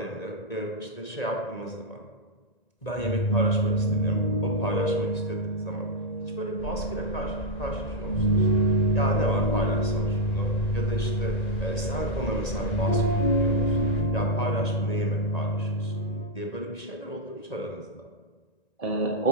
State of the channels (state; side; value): late; right; 1.9 ms